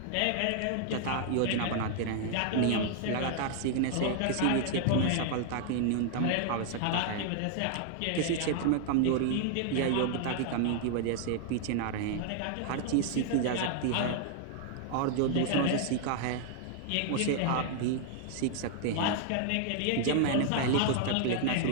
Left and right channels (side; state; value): both; different; correlation 0.00